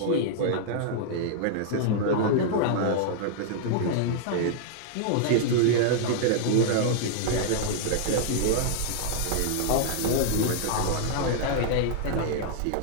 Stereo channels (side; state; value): both; different; correlation -0.01